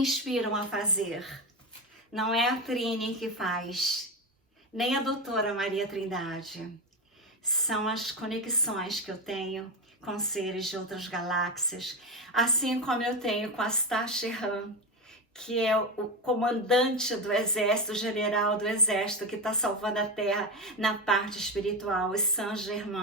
a fazer. Não é a Trini que faz, nem a doutora Maria Trindade. São as conexões que eu tenho com seres de outras galáxias, assim como eu tenho com a Tashi Han, que é o comandante do exército, o general do exército que está salvando a Terra na parte espiritual, o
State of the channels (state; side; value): normal; both; correlation 0.16